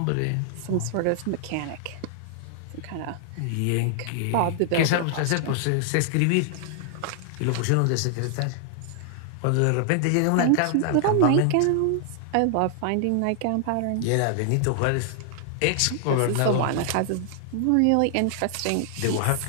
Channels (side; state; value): both; different; correlation 0.00